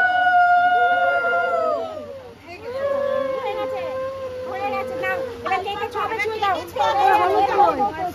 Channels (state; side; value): identical; both; correlation 1.00